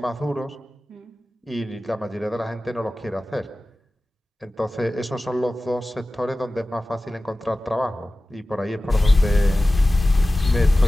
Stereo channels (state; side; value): normal; both; correlation 0.96